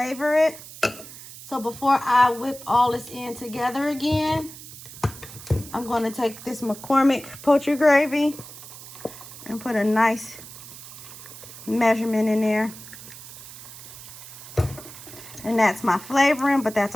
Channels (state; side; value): noise; right; hiss, 15 dB below the sound